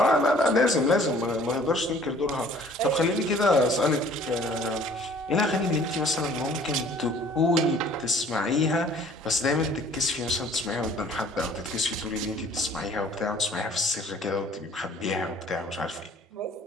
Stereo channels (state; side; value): normal; both; correlation 0.54